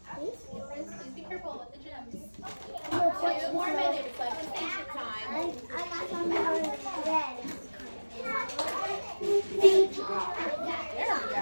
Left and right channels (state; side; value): inverted; both; correlation -1.00